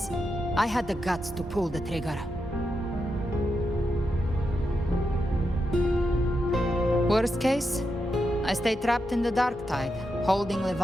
I had the guts to pull the trigger. Worst case, I stay trapped in the Dark Tide, holding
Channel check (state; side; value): normal; both; correlation 0.86